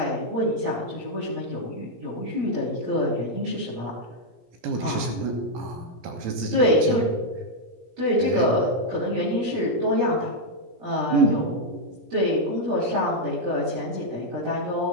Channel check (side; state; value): left; late; 17 ms